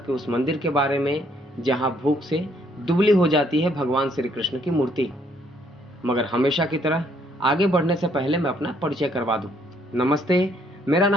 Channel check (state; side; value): normal; both; correlation 0.67